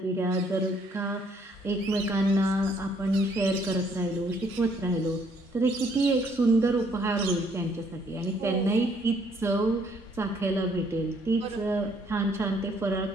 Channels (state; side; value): normal; both; correlation 0.66